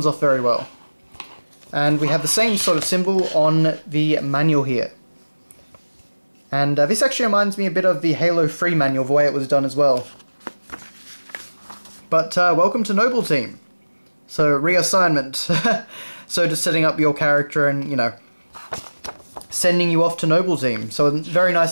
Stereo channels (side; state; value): both; inverted; correlation -1.00